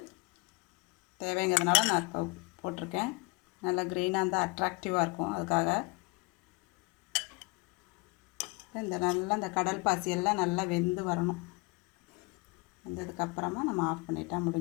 தேவைங்கிறதுனால நான் போட்டிருக்கேன். நல்லா க்ரீனாக இருந்தால் அட்ராக்டிவாக இருக்கும், அதுக்காக. இந்த கடல் பாசியெல்லாம் நல்லா வெந்து வரணும். வெந்ததுக்கப்புறமா நம்ம ஆஃப் பண்ணிட்டா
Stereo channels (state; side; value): quieter; right; 26.9 dB